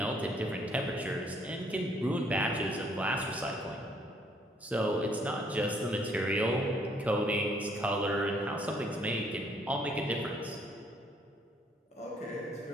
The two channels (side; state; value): both; normal; correlation 0.65